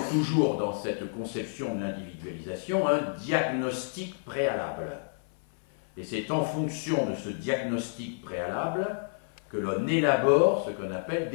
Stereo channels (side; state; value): right; silent; 58 dB below the other